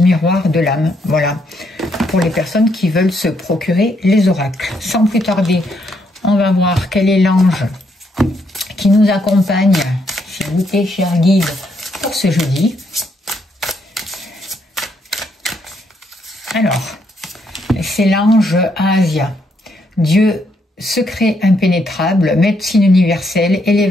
de l'âme. Voilà, pour les personnes qui veulent se procurer les oracles. Sans plus tarder, on va voir quel est l'ange qui nous accompagne, s'il vous plaît, cher guide, pour ce jeudi. Alors, c'est l'ange Asia. Dieu, secret impénétrable, médecine universelle,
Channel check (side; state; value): both; normal; correlation 0.75